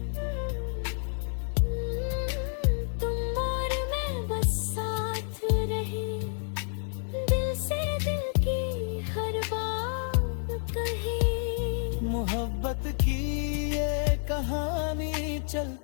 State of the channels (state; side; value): silent; right; 58 dB below the other